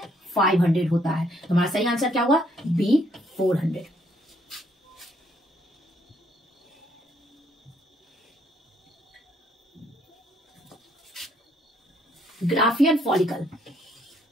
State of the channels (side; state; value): both; normal; correlation 0.69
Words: 500 होता है। तो हमारा सही आंसर क्या हुआ? B, 400। Graafian follicle